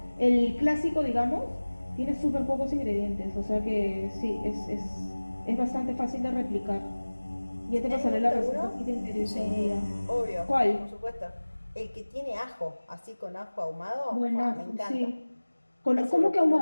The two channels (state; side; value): inverted; both; correlation -1.00